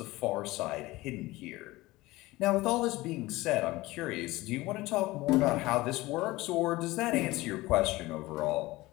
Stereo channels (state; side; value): quieter; right; 19.6 dB